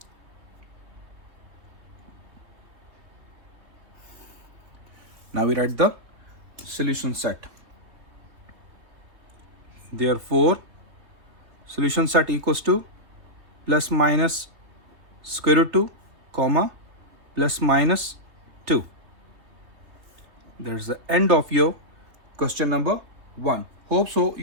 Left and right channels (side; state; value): left; late; 3.3 ms